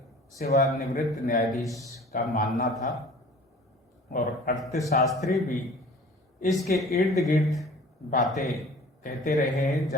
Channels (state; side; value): normal; both; correlation 0.46